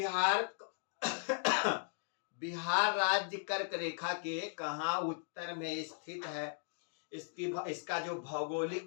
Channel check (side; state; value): right; silent; digital silence